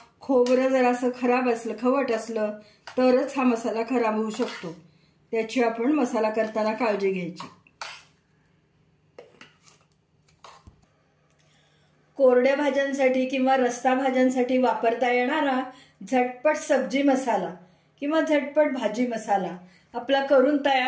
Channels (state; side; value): identical; both; correlation 1.00